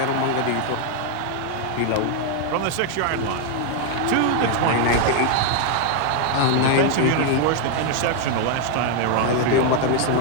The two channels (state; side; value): different; both; correlation 0.00